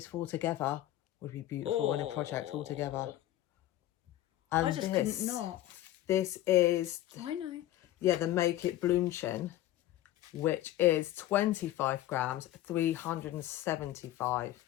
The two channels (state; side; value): quieter; right; 14.4 dB